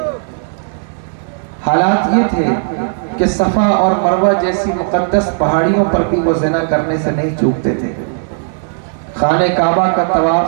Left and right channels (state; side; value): silent; left; 70 dB below the other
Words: حالات یہ تھے کہ صفا اور مروہ جیسی مقدس پہاڑیوں پر بھی وہ زنا کرنے سے نہیں چوکتے تھے. خانہ کعبہ کا